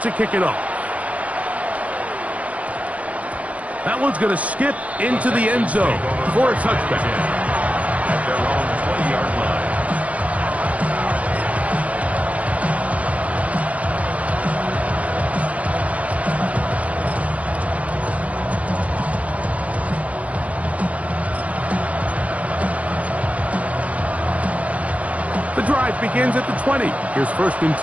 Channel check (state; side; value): late; left; 0.067 ms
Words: to kick it off. That one's going to skip into the end zone for a touchback. At their own 20-yard line. The drive begins at the 20. Here's 1st and